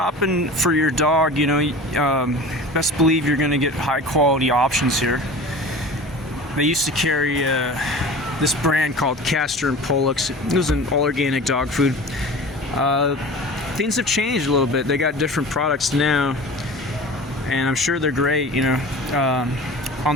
for your dog, you know, best believe you're gonna get high quality options here. They used to carry this brand called Castor and Pollux. It was an all organic dog food. Things have changed a little bit. They got different products now, and I'm sure they're great, you know, on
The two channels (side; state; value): both; normal; correlation 0.37